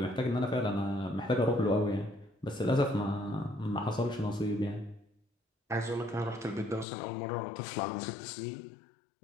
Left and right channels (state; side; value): drops out; right; at 6.9 s